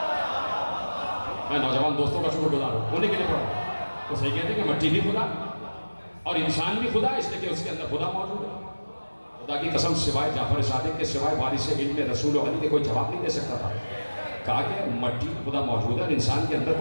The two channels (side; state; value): both; inverted; correlation -1.00